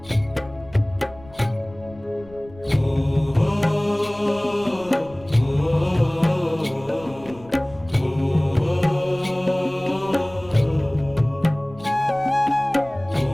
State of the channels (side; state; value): left; noise; rumble, 22 dB below the sound